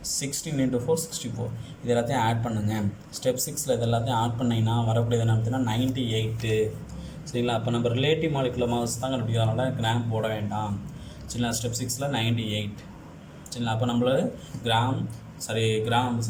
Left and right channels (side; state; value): both; identical; correlation 1.00